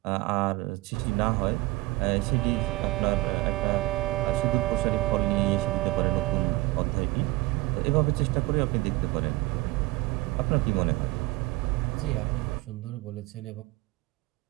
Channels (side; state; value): left; quieter; 21.3 dB